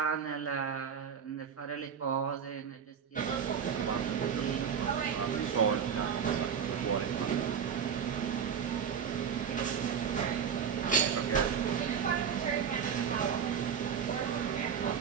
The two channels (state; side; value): quieter; left; 7.4 dB